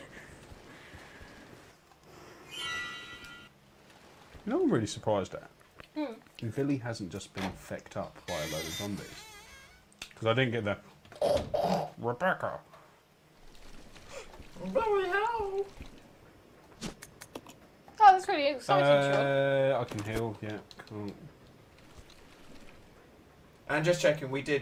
You know what I'm really surprised at? Billy hasn't just been fecked up by a load of zombies. Because I didn't get the Rebecca. Bloody hell. Oh, that's really exciting, Sean. I can heal, yeah. Cool. And just checking, we did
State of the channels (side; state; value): both; identical; correlation 1.00